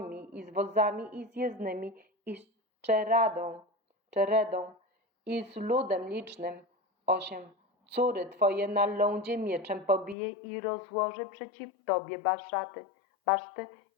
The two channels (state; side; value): drops out; right; at 10.2 s